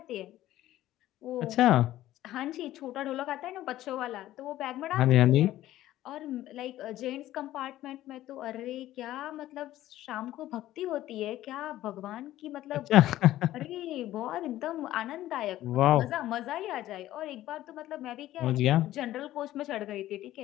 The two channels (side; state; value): right; quieter; 14.4 dB